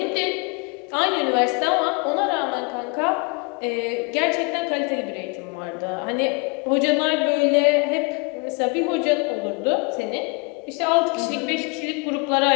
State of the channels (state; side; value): quieter; right; 31.9 dB